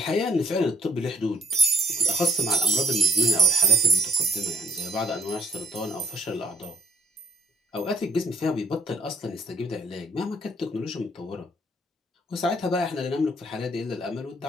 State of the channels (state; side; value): normal; both; correlation 0.64